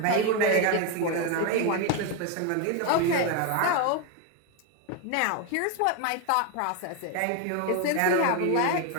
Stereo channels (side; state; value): both; different; correlation 0.02